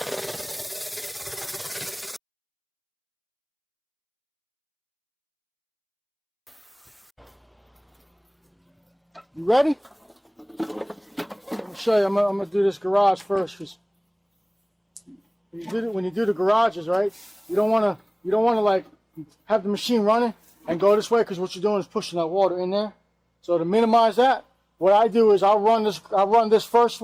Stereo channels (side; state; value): both; identical; correlation 1.00